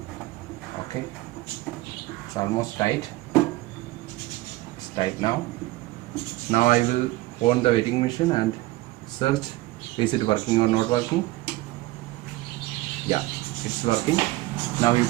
Okay, it's almost tight. It's tight now. Now I will on the wetting machine and search, is it working or not working. Yeah, it's working. Now you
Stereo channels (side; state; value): left; quieter; 18.7 dB